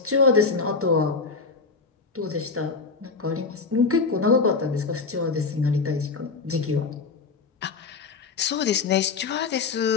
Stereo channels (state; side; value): quieter; right; 4.6 dB